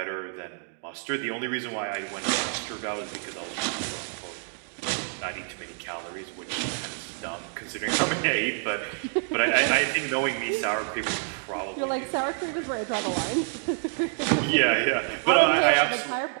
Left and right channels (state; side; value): silent; left; 58 dB below the other